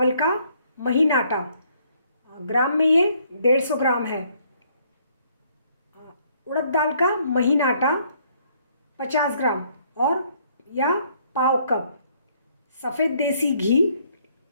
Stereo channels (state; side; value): inverted; both; correlation -0.66